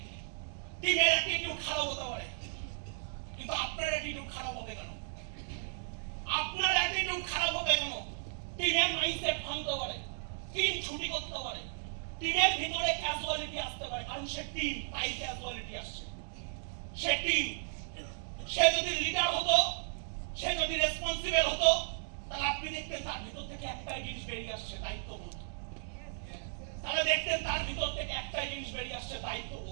টিমের অ্যাটিটিউড খারাপ হতে পারে। কিন্তু আপনার অ্যাটিটিউড খারাপ হবে কেন? আপনার অ্যাটিটিউড খারাপ হবে কেন? টিমের মাইন্ডসেট ভাঙতে পারে, টিম ছুটি করতে পারে, টিমের ভিতরে ক্যাজুয়ালিটি আসতে পারে, কারণ সে টিম, তাই ক্যাজুয়ালিটি আসছে। সে টিম, সে যদি লিডার হতো, সে যদি রেসপন্সিবল হতো, তাহলে আপনি দেখতেন তার ভিতর থেকে একটাই জিনিস বেরিয়ে আসছে, দায়িত্ববোধ। তাহলে দেখতেন তার ভিতর থেকে একটাই জিনিস বেরিয়ে আসছে,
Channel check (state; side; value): silent; left; digital silence